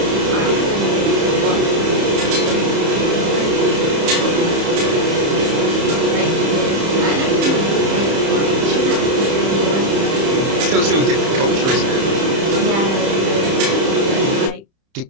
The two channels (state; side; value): late; left; 30 ms